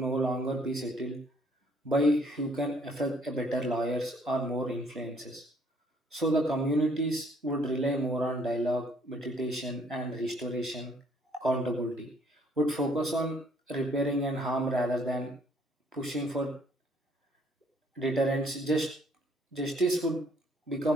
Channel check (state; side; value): normal; both; correlation 0.63